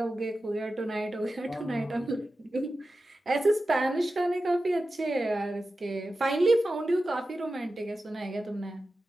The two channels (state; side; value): normal; both; correlation 0.93